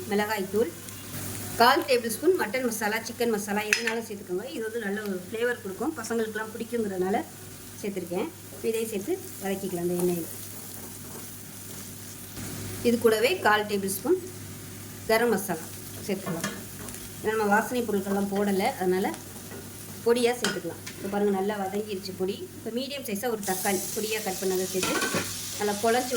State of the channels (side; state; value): both; identical; correlation 1.00